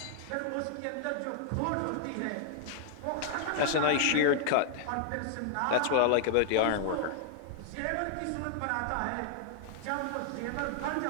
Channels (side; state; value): both; different; correlation 0.00